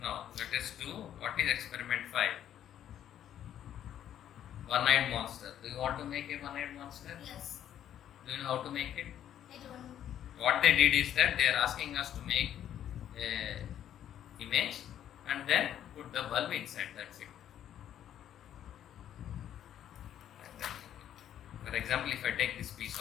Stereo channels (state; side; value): quieter; right; 10.6 dB